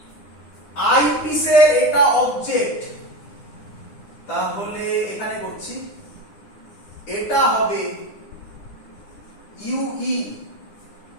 আইপিসের এটা অবজেক্ট, তাহলে এখানে করছি এটা হবে UE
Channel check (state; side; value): late; right; 9.8 ms